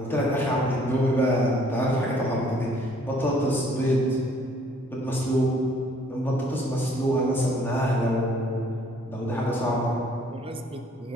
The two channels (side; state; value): both; normal; correlation 0.60